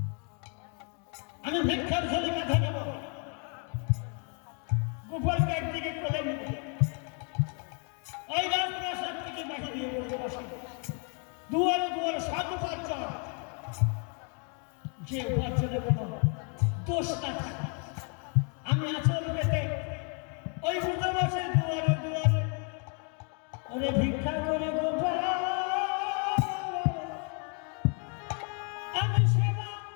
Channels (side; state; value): right; quieter; 39.1 dB